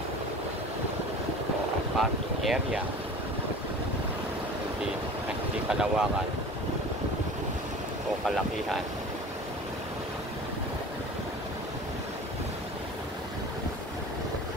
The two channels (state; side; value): normal; both; correlation 0.39